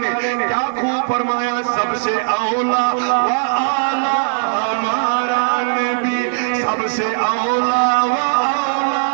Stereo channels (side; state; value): left; silent; digital silence